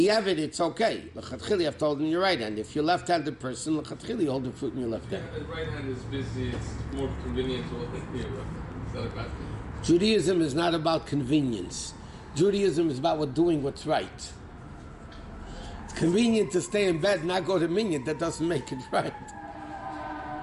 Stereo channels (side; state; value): both; identical; correlation 1.00